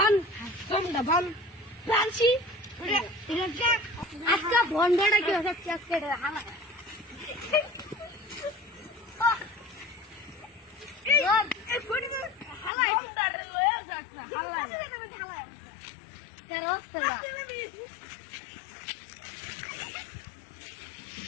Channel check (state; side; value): drops out; right; at 12.7 s